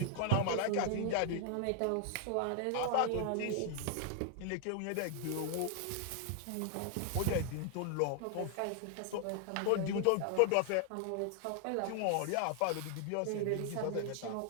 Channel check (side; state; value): both; different; correlation 0.00